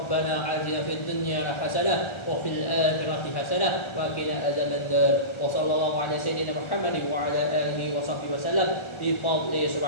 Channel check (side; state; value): right; late; 1.4 ms